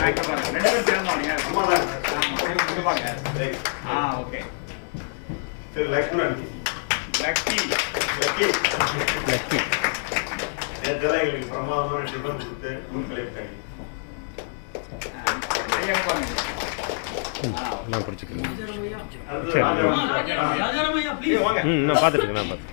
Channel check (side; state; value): right; silent; digital silence